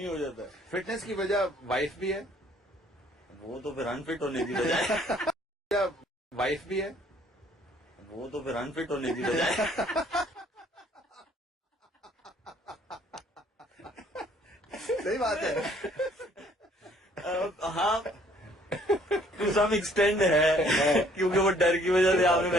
हो जाता है। फिटनेस की वजह वाइफ भी है, वो तो फिर अनफिट होने की बजाय वाइफ भी है, वो तो फिर अनफिट होने की बजाय सही बात है। हाँ टू सम एक्सटेंड है, क्योंकि वो डर की वजह से आपने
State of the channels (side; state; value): both; normal; correlation 0.61